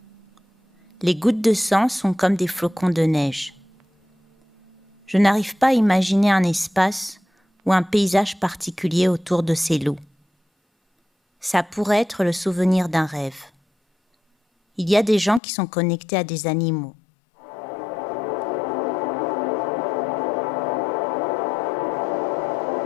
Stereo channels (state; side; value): drops out; right; at 15.4 s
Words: Les gouttes de sang sont comme des flocons de neige. Je n'arrive pas à imaginer un espace ou un paysage particulier autour de ces loups. Ça pourrait être le souvenir d'un rêve. Il y a des gens qui sont connectés à des animaux.